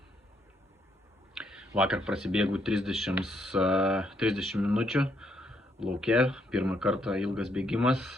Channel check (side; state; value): both; normal; correlation 0.74